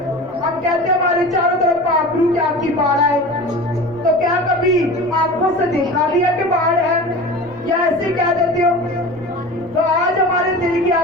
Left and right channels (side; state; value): right; noise; rumble, 29 dB below the sound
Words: हम कहते हैं हमारे चारों तरफ पाखरू की आपकी बाढ़ है, तो क्या कभी आंखों से देखा भी है कि बाढ़ है, या ऐसे कह देते हो? तो आज हमारे दिल की